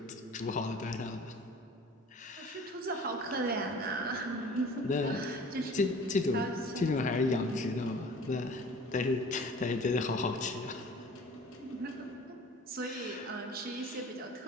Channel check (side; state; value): both; normal; correlation 0.45